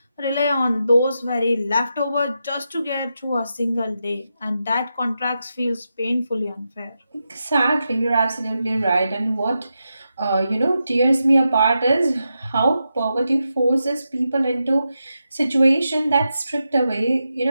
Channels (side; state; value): both; inverted; correlation -0.87